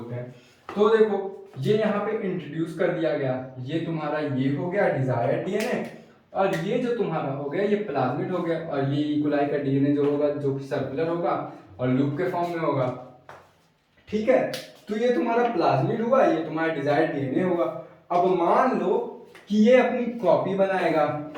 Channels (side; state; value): both; identical; correlation 1.00